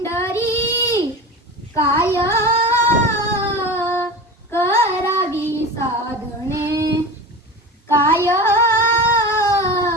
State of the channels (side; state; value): both; normal; correlation 0.29